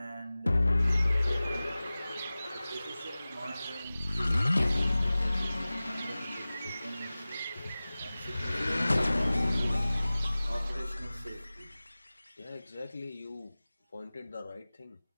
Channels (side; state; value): both; inverted; correlation -0.98